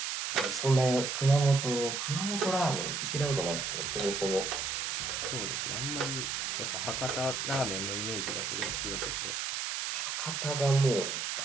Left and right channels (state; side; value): noise; right; hiss, 2 dB below the sound